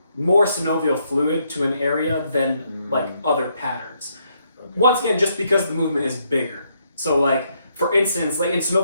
more synovial fluid to an area than like other patterns. Okay. Once again, just because the movement is bigger. So like, for instance, like in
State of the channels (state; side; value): inverted; both; correlation -0.75